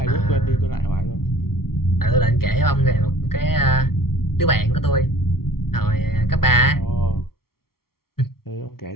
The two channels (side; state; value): right; late; 0.94 ms